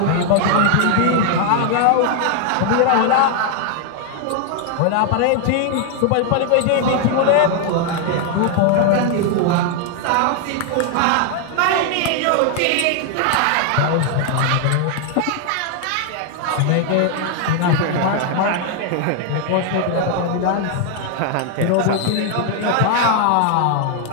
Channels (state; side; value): different; both; correlation 0.00